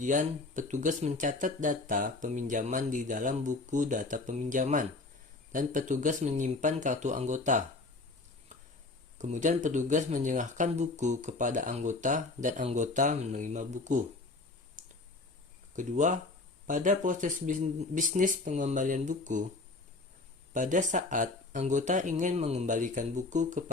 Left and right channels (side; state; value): right; quieter; 3.4 dB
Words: petugas mencatat data peminjaman di dalam buku data peminjaman, dan petugas menyimpan kartu anggota. Kemudian, petugas menyerahkan buku kepada anggota, dan anggota menerima buku. Kedua, pada proses bisnis pengembalian buku, pada saat anggota ingin mengembalikan buku